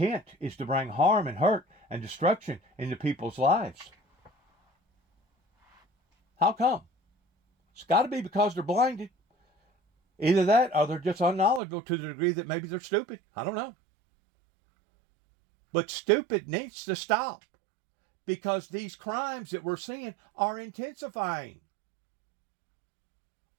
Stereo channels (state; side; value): drops out; left; at 11.6 s